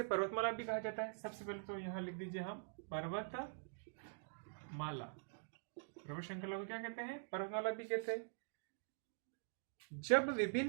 पर्वतमाला भी कहा जाता है। सबसे पहले तो यहां लिख दीजिए हम पर्वतमाला। पर्वत श्रृंखला को क्या कहते हैं? पर्वतमाला भी कहते हैं। जब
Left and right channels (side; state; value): left; silent; digital silence